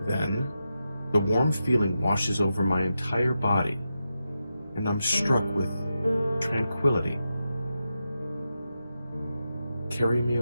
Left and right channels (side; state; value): both; inverted; correlation -0.89